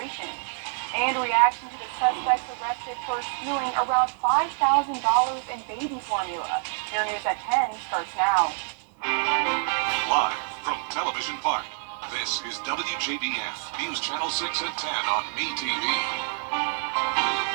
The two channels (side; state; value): left; silent; digital silence